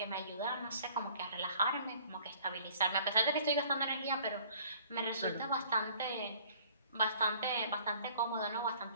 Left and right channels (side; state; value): both; inverted; correlation -0.54